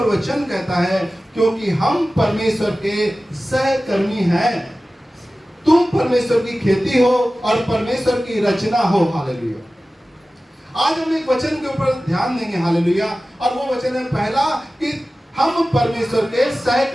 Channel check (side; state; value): both; normal; correlation 0.96